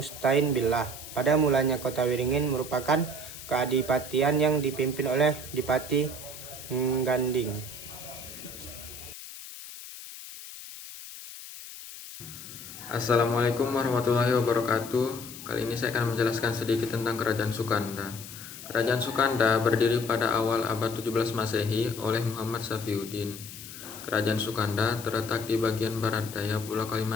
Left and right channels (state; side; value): noise; left; hiss, 13 dB below the sound